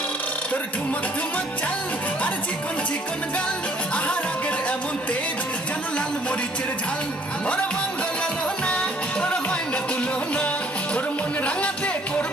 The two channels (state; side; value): normal; both; correlation 0.60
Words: তোর ঠুমক ঠুমক চাল আর চিকন চিকন গাল, আহার আগের এমন তেজ যেন লাল মরিচের ঝাল। ওরা বাঙ্গলাল না তোর হয় না তুলো না, তোর মন রাঙাতে